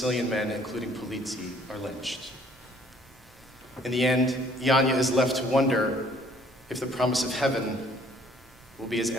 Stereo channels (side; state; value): both; normal; correlation 0.59